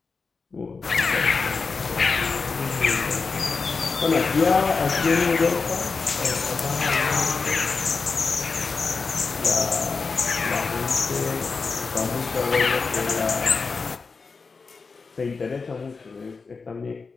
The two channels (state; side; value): quieter; right; 4.6 dB